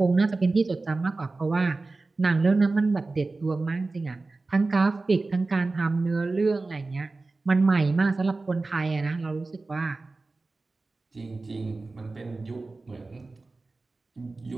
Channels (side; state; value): left; quieter; 3.5 dB